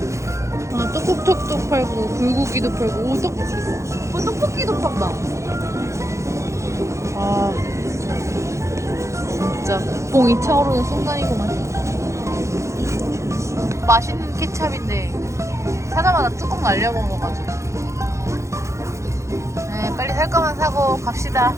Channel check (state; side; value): late; left; 0.14 ms